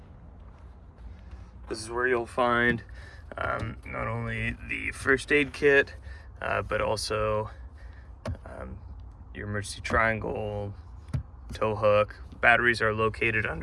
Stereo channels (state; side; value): identical; both; correlation 1.00